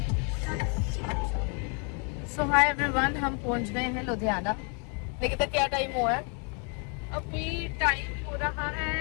So hi everyone, हम पहुंच गए हैं लुधियाना। देखिए तो क्या टाइम हुआ है? अभी टाइम हो रहा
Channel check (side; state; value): right; quieter; 37.3 dB